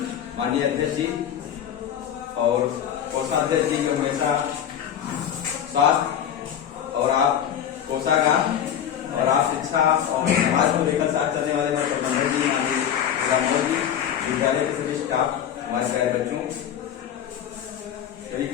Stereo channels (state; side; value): quieter; right; 9.4 dB